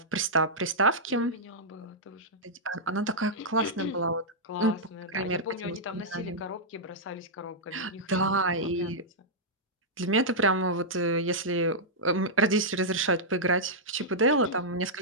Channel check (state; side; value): normal; both; correlation -0.09